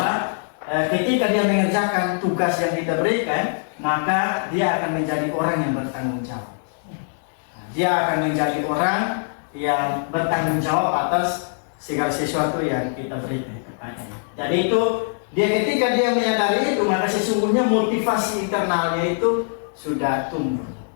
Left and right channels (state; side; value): silent; right; digital silence